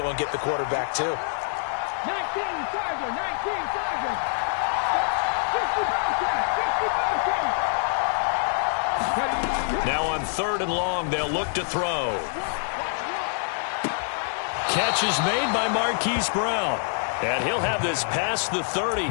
and get the quarterback, too. 19 Tiger, 19 Tiger. 60 Now on third and long, they'll look to throw. Catch is made by Marquise Brown. And he'll have this past the 30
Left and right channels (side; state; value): right; silent; 61 dB below the other